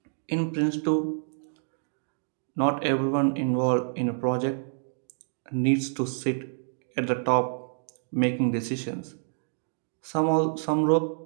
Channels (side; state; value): left; silent; digital silence